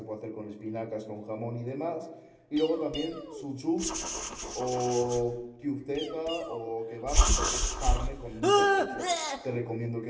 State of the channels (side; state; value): both; identical; correlation 1.00